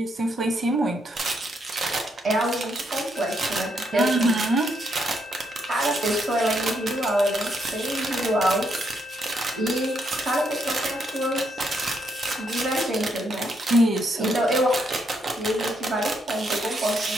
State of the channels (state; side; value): normal; both; correlation 0.76